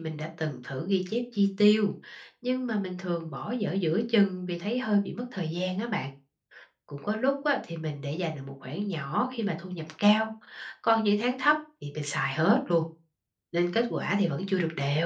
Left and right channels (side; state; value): both; identical; correlation 1.00